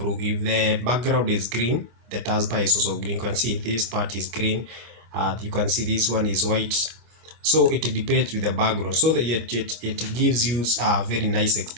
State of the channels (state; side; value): late; left; 24 ms